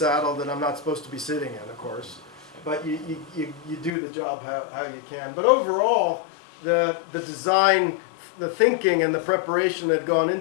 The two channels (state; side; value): drops out; right; at 3.9 s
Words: that I'm not supposed to be sitting in, of course. But you do the job how you can. But overall, the design, the thinking, and the preparation that had gone